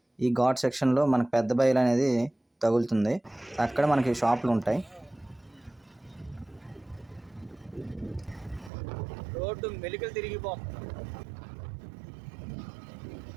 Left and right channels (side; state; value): left; drops out; at 8.7 s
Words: ఈ ఘాట్ సెక్షన్లో మనకు పెద్ద బయలు అనేది తగులుతుంది. అక్కడ మనకి షాపులు ఉంటాయి. రోడ్డు మెలికలు తిరిగిపోతుంది.